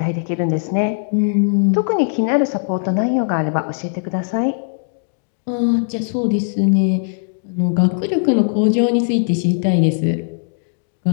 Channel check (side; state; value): right; silent; digital silence